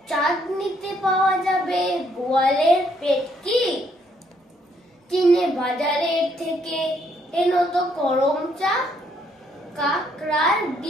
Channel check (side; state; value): both; normal; correlation 0.70